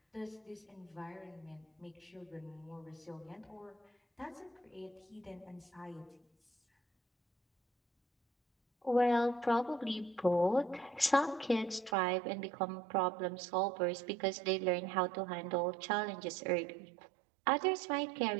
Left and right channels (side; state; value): left; drops out; at 12.0 s